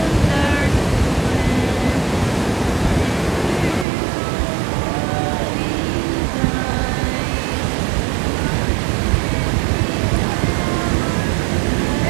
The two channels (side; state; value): left; drops out; at 3.9 s